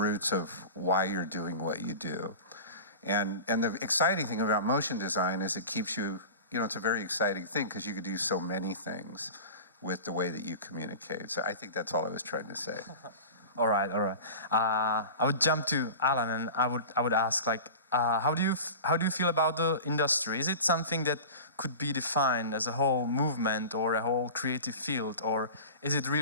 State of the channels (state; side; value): inverted; both; correlation -0.34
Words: of why you're doing what you do. And the exciting thing about motion design is it keeps you, it's a very exciting thing because you could do so many things with the way that you communicate. So I think that's all I was trying to say. All right. I would jump to Alan, and I would ask, like, how do you feel about the industry? Is it something that could be defined as a whole movement or a whole creative field, or is it